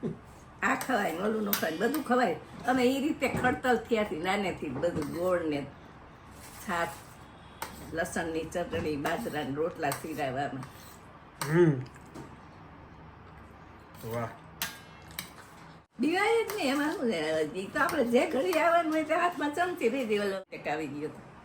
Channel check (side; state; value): both; identical; correlation 1.00